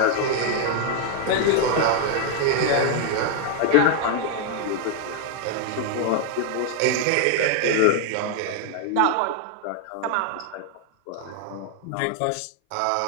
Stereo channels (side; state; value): both; different; correlation 0.00